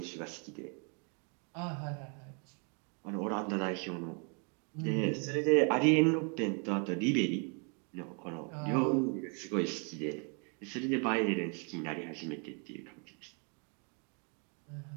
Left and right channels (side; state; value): left; quieter; 37.6 dB